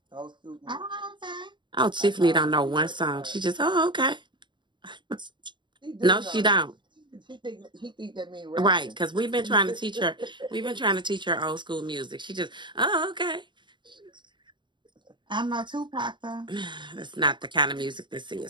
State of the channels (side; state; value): left; late; 0.23 ms